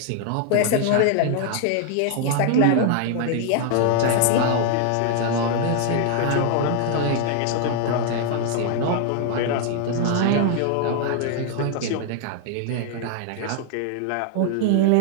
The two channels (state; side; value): different; both; correlation 0.00